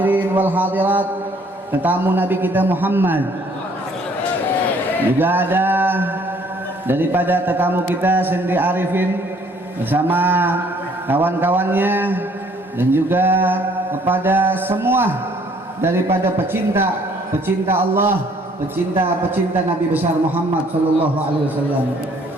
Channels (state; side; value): normal; both; correlation 0.61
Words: wal hadirat, tetamu Nabi kita Muhammad. Juga ada daripada tetamu kita Sendi Arifin bersama kawan-kawannya, dan juga kepada semua daripada pecinta Allah, pecinta Nabi besar Muhammad sallallahu alaihi wasallam.